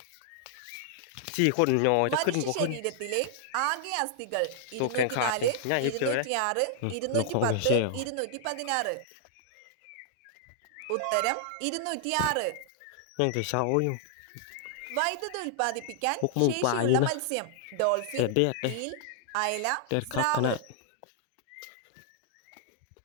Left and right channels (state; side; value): different; both; correlation -0.01